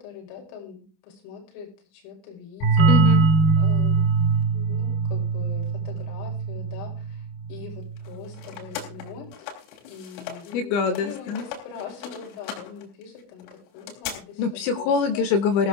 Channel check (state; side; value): late; right; 25 ms